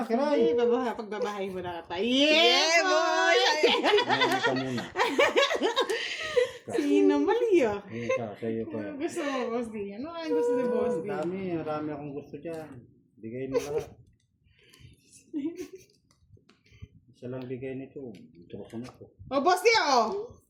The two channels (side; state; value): both; identical; correlation 1.00